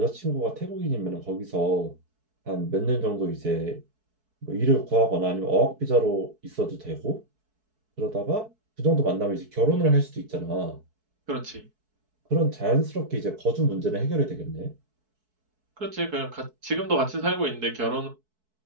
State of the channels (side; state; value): left; late; 4.6 ms